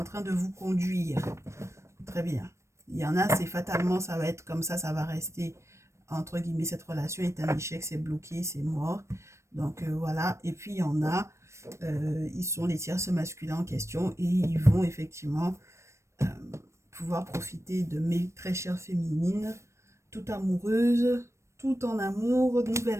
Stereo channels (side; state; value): left; late; 0.13 ms